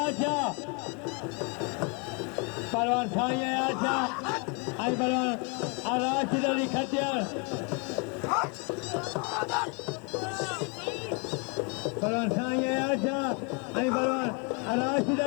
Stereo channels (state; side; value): quieter; right; 33.7 dB